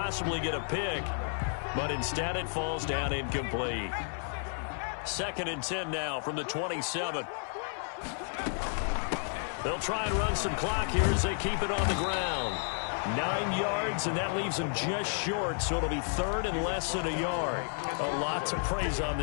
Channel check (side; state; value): right; silent; 57 dB below the other